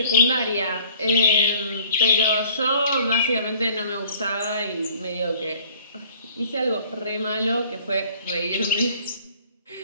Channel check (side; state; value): both; inverted; correlation -0.54